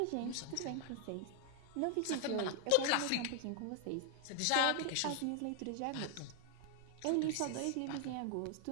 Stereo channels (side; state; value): both; different; correlation 0.00